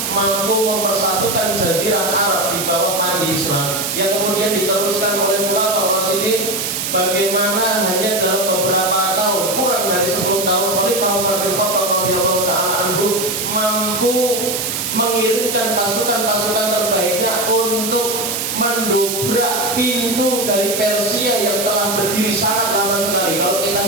mampu mempersatukan jazirah Arab di bawah mandi Islam, yang kemudian diteruskan oleh Khulafaur Rasyidin. Bagaimana hanya dalam beberapa tahun, kurang dari 10 tahun, Khalifah Umar bin Khattab radhiyallahu taala anhu mampu mengirimkan pasukan-pasukan terbaiknya untuk mendobrak pintu dari Persia yang telah berdiri sangat lama sekali. Kalau kita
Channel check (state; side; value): noise; right; hiss, 2 dB below the sound